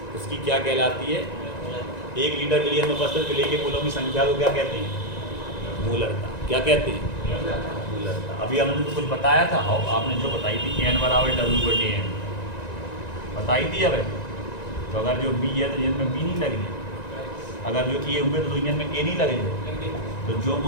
उसकी क्या कहलाती है? 1 लीटर बिलियन में उपस्थित विलेय के मूलों की संख्या को क्या कहते हैं? मूलरता। क्या कहते हैं? मूलरता। अभी हमने तो कुछ बताया था, आपने जो बताई थी n बराबर W/n बताई थी। अब तो अगर जो b है तो इनमें b नहीं लगेगी, अगर जो a हुए तो इनमें a नहीं लगेगी, तो जो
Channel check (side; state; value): right; late; 1.9 ms